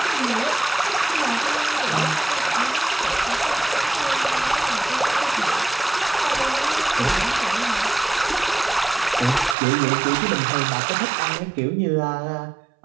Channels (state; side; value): drops out; left; at 9.6 s